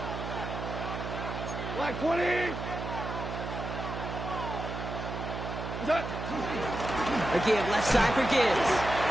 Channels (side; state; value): right; noise; hum, 6 dB below the sound